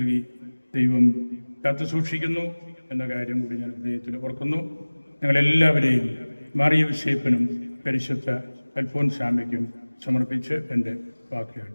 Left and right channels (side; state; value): both; inverted; correlation -1.00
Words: ദൈവം കാത്തു സൂക്ഷിക്കുന്നു എന്ന കാര്യം കൂടി ഞാൻ ഹൃദയത്തിൽ ഓർക്കുന്നു. ഞങ്ങളെല്ലാവരെയും മാറിയ വിശേപ്പനും പരിശുദ്ധ അൽഫോൻസാമയ്ക്കും സമർപ്പിച്ച് എൻ്റെ വാക്കുകൾ